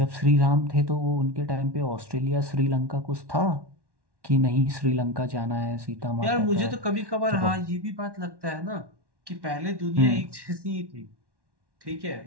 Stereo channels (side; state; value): left; late; 1.1 ms